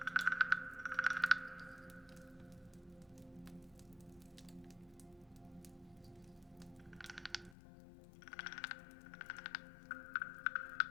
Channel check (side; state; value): right; drops out; at 7.6 s